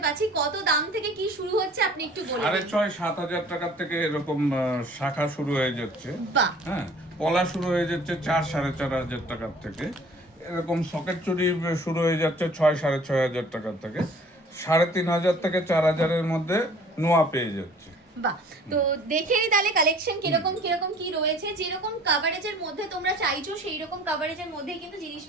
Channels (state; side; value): normal; both; correlation 0.51